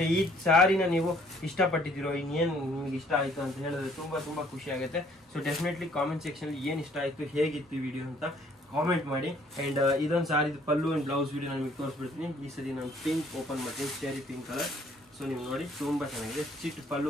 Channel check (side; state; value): both; normal; correlation 0.61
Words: ಈ ಸಾರಿನ ನೀವು ಇಷ್ಟಪಟ್ಟಿದ್ದೀರೋ, ಇನ್ನೇನು ನಿಮ್ಗೆ ಇಷ್ಟ ಆಯ್ತು ಅಂತ ಹೇಳಿದ್ರೆ ತುಂಬಾ ತುಂಬಾ ಖುಷಿ ಆಗುತ್ತೆ. ಸೊ ಡೆಫಿನೆಟ್ಲಿ ಕಾಮೆಂಟ್ ಸೆಕ್ಷನ್ ಏನ್ ಇಷ್ಟ ಆಯ್ತು, ಹೇಗಿತ್ತು ವಿಡಿಯೋ ಅಂತ ಕಾಮೆಂಟ್ ಮಾಡಿ. ಅಂಡ್ ಇದೊಂದು ಸಾರಿ ಪಲ್ಲು ಅಂಡ್ ಬ್ಲೌಸ್ ವಿಡಿಯೋ ನಾನು ನಿಮಗೆ ತೋರಿಸ್ಬಿಡ್ತೀನಿ. ಈ ಸರಿ ನಾನು ಪಿಂಕ್ ಓಪನ್ ಮಾಡ್ತೀನಿ, ಸ್ಟೇರಿ ಪಿಂಕ್ ಕಲರ್. ಸೊ ನೀವು ನೋಡಿ ತುಂಬಾ ಚೆನ್ನಾಗಿದೆ, ಚಿಟ್